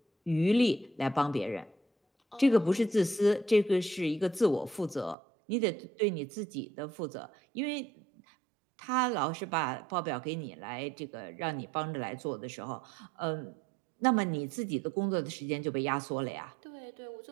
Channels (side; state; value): left; drops out; at 5.2 s